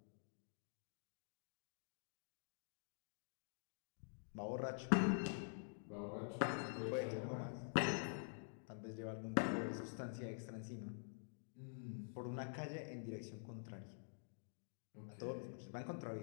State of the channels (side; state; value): right; silent; digital silence